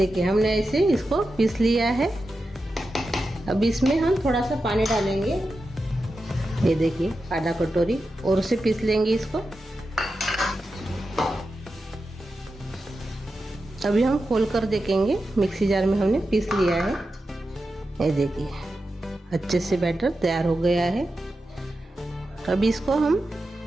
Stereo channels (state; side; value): normal; both; correlation 0.90